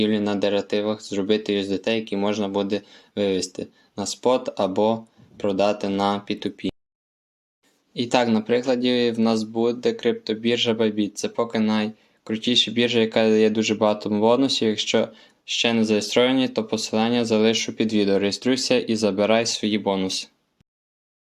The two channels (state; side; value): identical; both; correlation 1.00